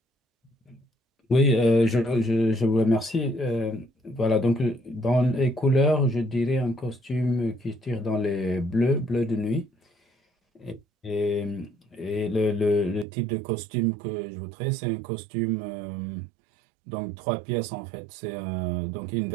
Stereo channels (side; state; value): left; drops out; at 13.1 s